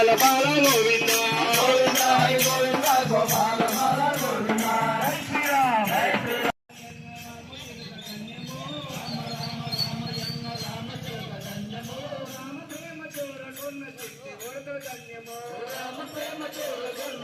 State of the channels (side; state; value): both; identical; correlation 1.00